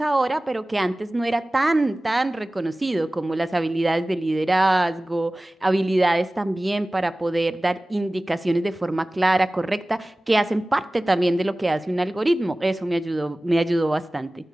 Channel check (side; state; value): both; normal; correlation 0.97